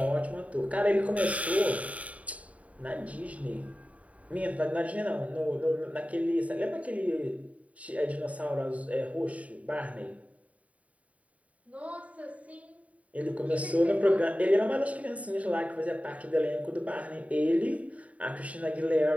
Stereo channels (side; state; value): left; late; 0.068 ms